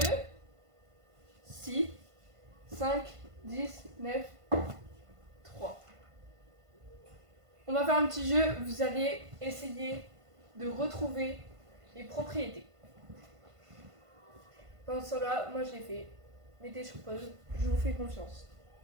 6, 5, 10, 9, 3. On va faire un petit jeu, vous allez essayer de retrouver les propriétés. Pendant ce temps-là, moi je l'ai fait. Mettez sur pause, je vous fais confiance.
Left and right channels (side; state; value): left; late; 1.5 ms